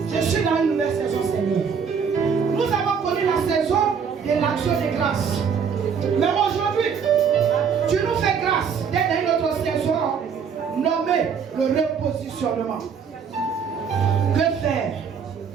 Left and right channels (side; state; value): left; quieter; 6.6 dB